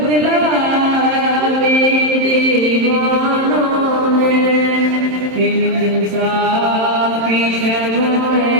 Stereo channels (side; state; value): left; late; 27 ms